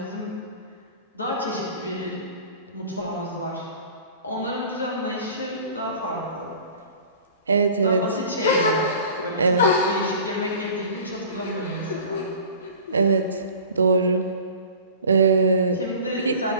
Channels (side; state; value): both; inverted; correlation -0.42